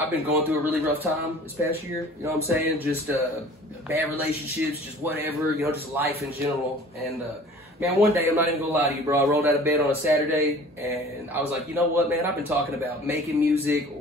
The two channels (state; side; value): normal; both; correlation 0.46